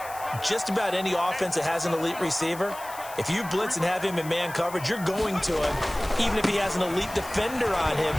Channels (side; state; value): left; noise; hiss, 16 dB below the sound